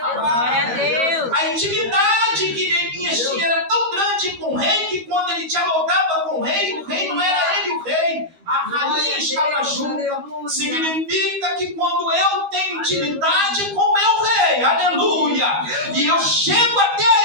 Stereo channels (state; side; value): late; left; 12 ms